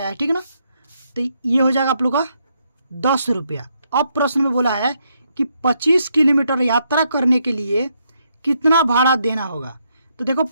है, ठीक है ना। तो ये हो जाएगा आप लोग का 10 रुपया। अब प्रश्न में बोला है कि 25 किलोमीटर यात्रा करने के लिए कितना भाड़ा देना होगा। तो देखो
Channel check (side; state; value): both; inverted; correlation -0.77